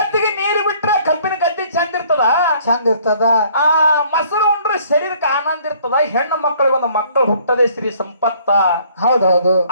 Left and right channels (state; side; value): inverted; both; correlation -0.59